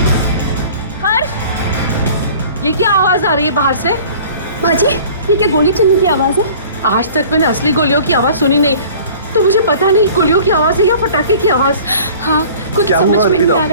हर्ष, ये क्या आवाज आ रही है बाहर से? बाजी, ये क्या गोली चलने की आवाज है? आज तक मैंने असली गोलियों की आवाज सुनी नहीं, तो मुझे पता नहीं गोलियों की आवाज है या पटाखे की आवाज। हाँ, कुछ समझ में नहीं आ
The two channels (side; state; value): both; inverted; correlation -0.47